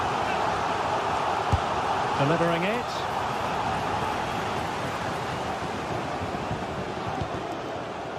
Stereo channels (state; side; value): identical; both; correlation 1.00